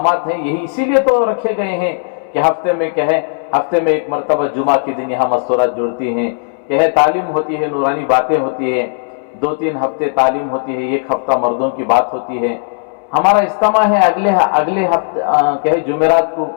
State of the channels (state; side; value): silent; right; 67 dB below the other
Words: ہیں یہی اسی لیے تو رکھے گئے ہیں کہ ہفتے میں ایک مرتبہ جمعہ کے دن یہاں مستورات جڑتی ہیں، تعلیم ہوتی ہے، نورانی باتیں ہوتی ہے، 2-3 ہفتے تعلیم ہوتی ہے، 1 ہفتہ مردوں کی بات ہوتی ہے۔ ہمارا اجتماع ہے اگلے ہفتے جمعرات کو